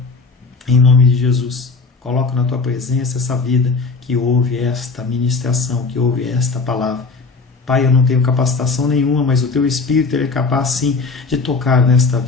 em nome de Jesus, coloco na tua presença essa vida que ouve esta ministração, que ouve esta palavra. Pai, eu não tenho capacitação nenhuma, mas o teu Espírito ele é capaz sim de tocar nesta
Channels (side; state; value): right; quieter; 4.2 dB